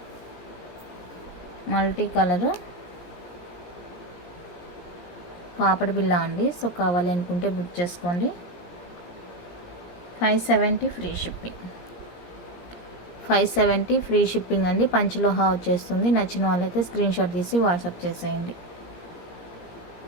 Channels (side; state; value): right; late; 17 ms